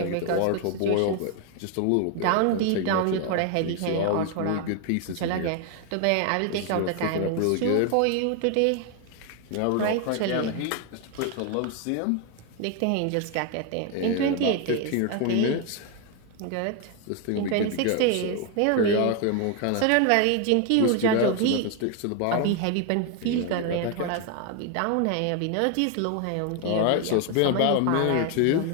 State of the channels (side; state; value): both; different; correlation 0.01